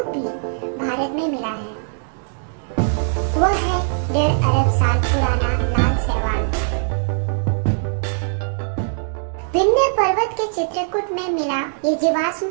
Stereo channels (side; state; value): left; silent; digital silence